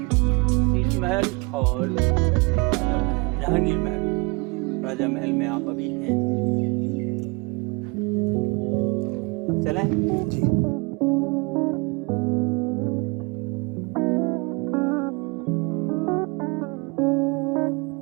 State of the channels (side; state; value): left; quieter; 28.7 dB